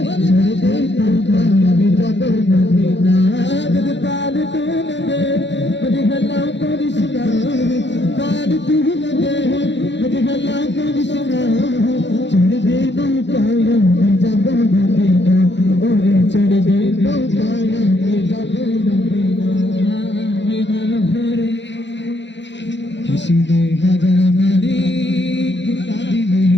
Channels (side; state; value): right; late; 0.52 ms